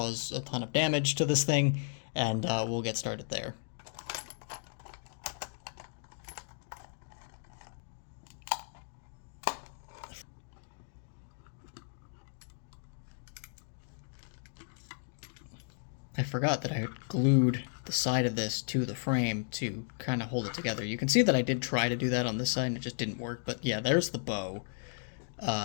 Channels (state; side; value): silent; right; digital silence